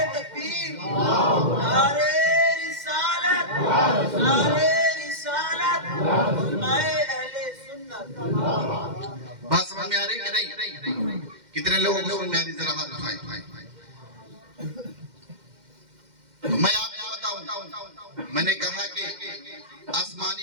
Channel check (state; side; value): late; left; 2.1 ms